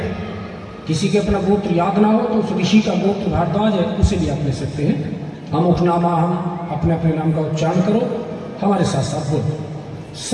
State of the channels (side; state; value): both; identical; correlation 1.00